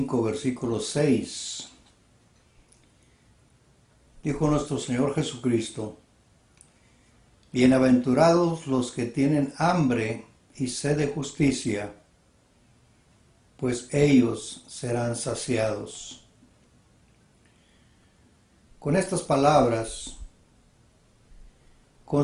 versículo 6, dijo nuestro Señor Jesucristo: Bienaventurados los que tienen hambre y sed de justicia, pues ellos serán saciados. Con estas palabras,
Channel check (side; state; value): both; identical; correlation 1.00